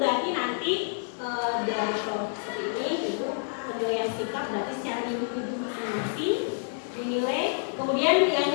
nanti dari kelompok seperti ini itu penilaian sikap berarti secara individu masing-masing dinilai. Kemudian yang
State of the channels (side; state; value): right; silent; digital silence